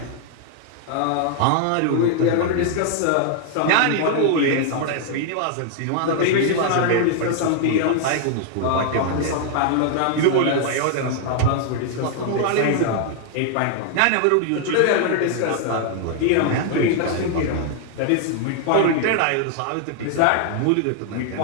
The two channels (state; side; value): different; both; correlation 0.00